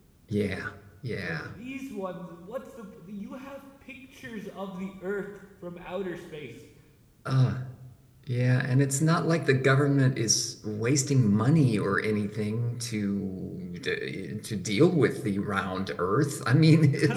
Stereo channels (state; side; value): identical; both; correlation 1.00